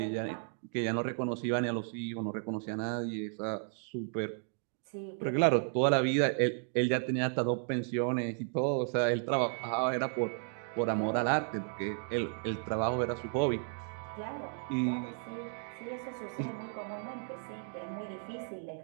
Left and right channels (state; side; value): silent; left; 55 dB below the other